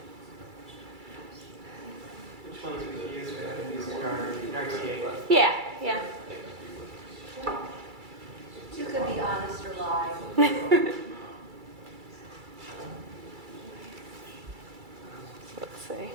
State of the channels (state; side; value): late; left; 2.3 ms